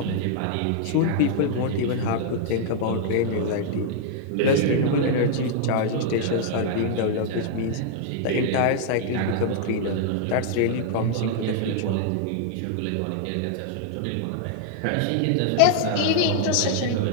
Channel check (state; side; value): different; both; correlation -0.01